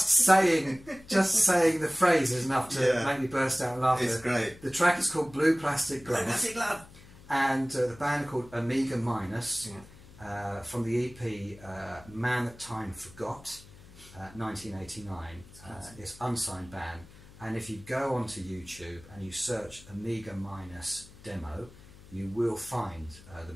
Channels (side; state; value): left; noise; hum, 21 dB below the sound